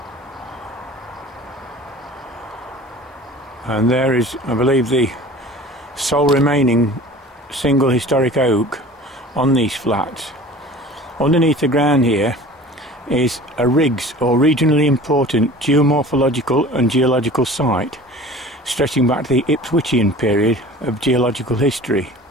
And there is, I believe, the sole remaining single historic oak on these flats. Underneath the ground here is a RIGS, or Regionally Important Geomorphological and Geological Site, stretching back to the Ipswichian period of geological history.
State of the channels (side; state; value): both; normal; correlation 0.42